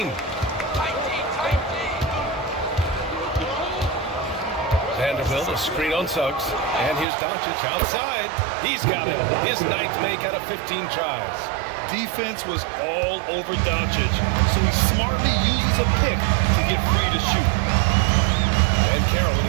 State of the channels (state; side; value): drops out; left; at 7.1 s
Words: Vanderbilt, a screen on Suggs. And here's Doncic outside. He's got it. His 9th make out of 15 tries. Defense was all over Doncic, so he smartly uses a pick to get free to shoot. And Carroll